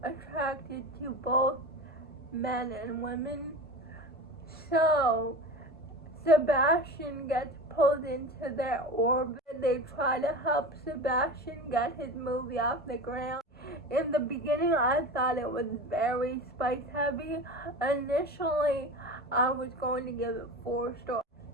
attracted to both men and women. So Sebastian gets pulled into their orbit. They try to help Sebastian get his movie off the ground. In the beginning, I thought it was very spice heavy. Initially, I was going to give it 4 stars,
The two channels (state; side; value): normal; both; correlation 0.30